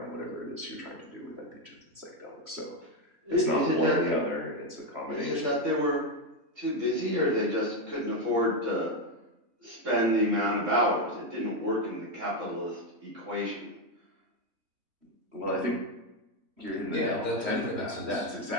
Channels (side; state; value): left; late; 3.1 ms